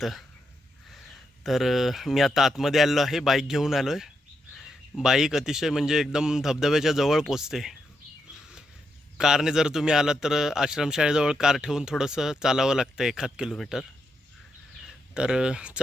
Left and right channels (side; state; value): both; normal; correlation 0.82